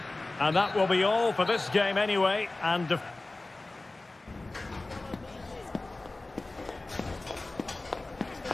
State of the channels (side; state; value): right; quieter; 3.0 dB